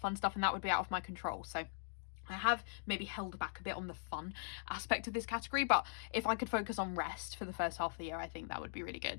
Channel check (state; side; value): silent; right; digital silence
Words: stuff, and that would be out of my control. So I have maybe held back a bit on the fun aspect of this category, but if I could focus on rest for the first half of the year, I think that would be really